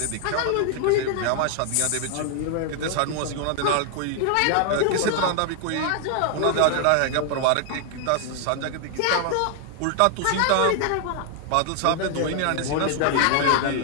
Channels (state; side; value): different; both; correlation 0.00